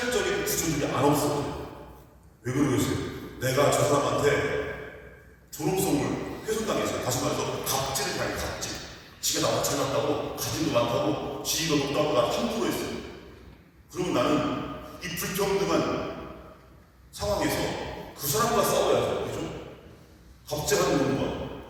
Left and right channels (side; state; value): both; identical; correlation 1.00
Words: 구조들이 안 없어요. 왜 그러겠어요? 내가 저 사람한테 존엄성을 훼손당했어요. 다시 말해서 갑질을 당해, 갑질. 지가 나보다 잘났다고, 가진도 많다고, 지위가 높다고 나 함부로 했어요. 그러면 나는 이 불평등한 상황에서 그 사람과 싸워야죠. 그죠? 갑질하는 놈과